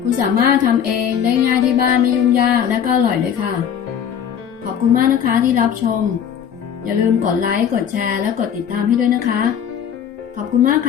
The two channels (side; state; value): right; quieter; 8.5 dB